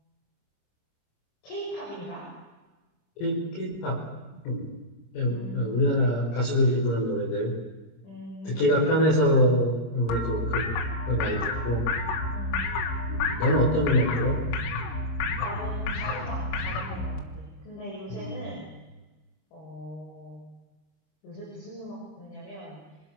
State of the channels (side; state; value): right; late; 26 ms